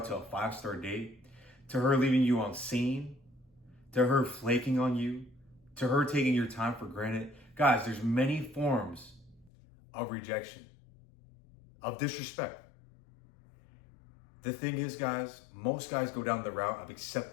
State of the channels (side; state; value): right; drops out; at 9.5 s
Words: to a 5-star date, to her leaving you on scene, to her flaking on you, to her taking your time for granted. Guys, there's many forms of rejection, of disrespect. The thing is, guys, most guys go down the route of